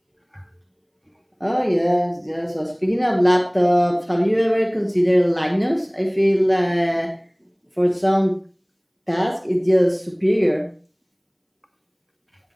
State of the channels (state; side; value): identical; both; correlation 1.00